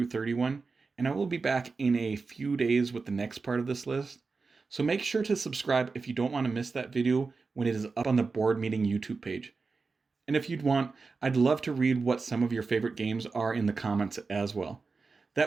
31, and I will be back in a few days with the next part of this list. So make sure to subscribe if you don't want to miss that video when it is up on the Board Meeting YouTube page. And if you'd want, I'd love to read what some of your favorite games are in the comments as well.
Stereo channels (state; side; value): quieter; left; 4.3 dB